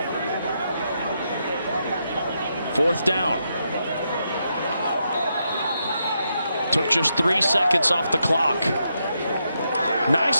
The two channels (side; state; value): both; inverted; correlation -0.82